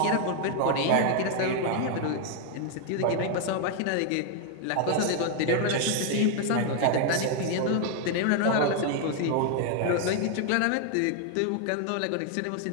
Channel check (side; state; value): both; different; correlation 0.00